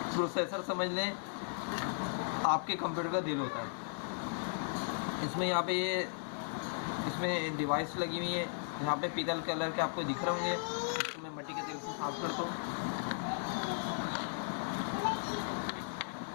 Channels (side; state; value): right; silent; 54 dB below the other